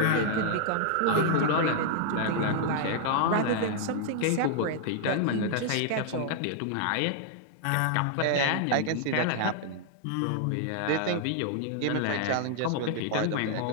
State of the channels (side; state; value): both; different; correlation -0.01